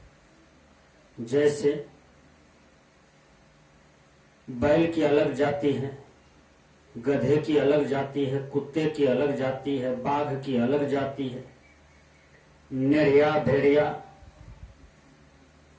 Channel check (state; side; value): identical; both; correlation 1.00